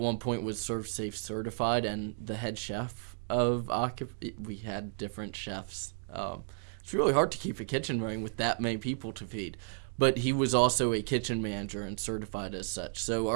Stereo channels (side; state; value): left; silent; 56 dB below the other